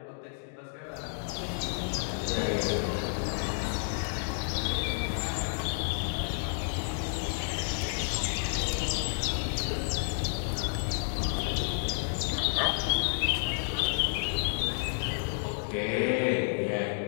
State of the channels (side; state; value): right; silent; digital silence